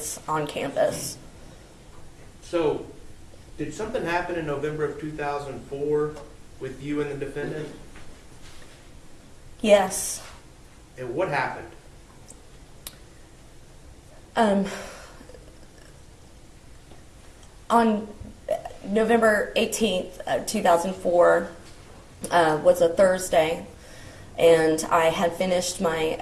on campus. So, did something happen in November of 2004 with you and the defendant? Yes. And what happened? On November 18th, 2004 was a Thursday, and I had finished my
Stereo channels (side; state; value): both; identical; correlation 1.00